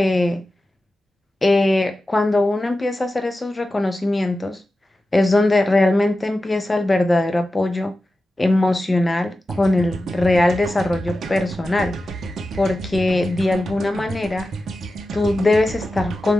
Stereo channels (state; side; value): normal; both; correlation 0.93